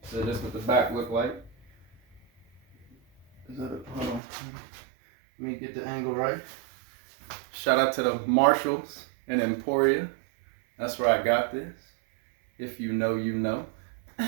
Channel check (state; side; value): drops out; left; at 4.2 s